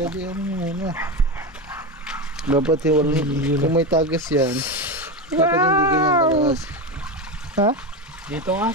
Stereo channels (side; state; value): both; normal; correlation 0.18